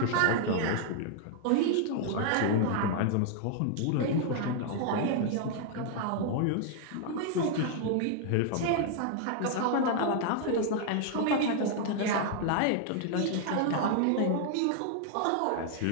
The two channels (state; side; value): different; both; correlation 0.00